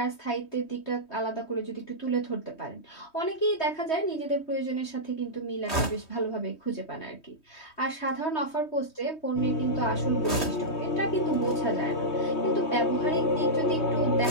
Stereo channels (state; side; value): late; right; 3.2 ms